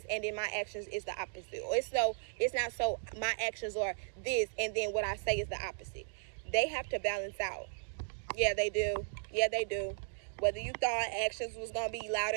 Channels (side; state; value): left; silent; digital silence